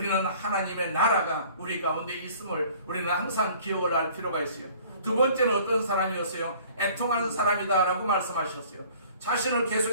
하나님의 나라가 우리 가운데 있음을 우리는 항상 기억을 할 필요가 있어요. 두 번째는 어떤 사람이었어요? 애통하는 사람이다 라고 말씀하셨어요. 자신을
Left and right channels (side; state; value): both; inverted; correlation -0.51